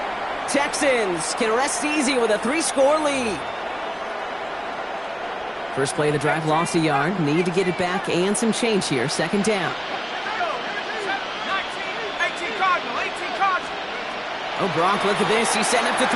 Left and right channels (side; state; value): both; identical; correlation 1.00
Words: Texans can rest easy with a 3-score lead. First play of the drive lost a yard. Need to get it back and some change here. Second down. 18 Cardinal, 18 Cardinal. Oh, Gronk, look at this. He's setting up to